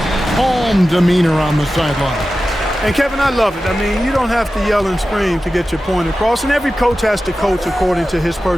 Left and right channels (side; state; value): both; normal; correlation 0.94